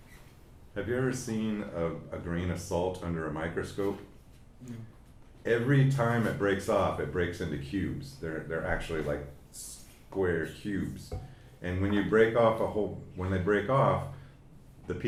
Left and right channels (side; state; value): both; identical; correlation 1.00